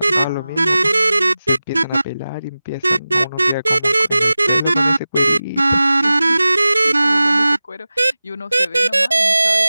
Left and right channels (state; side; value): inverted; both; correlation -0.96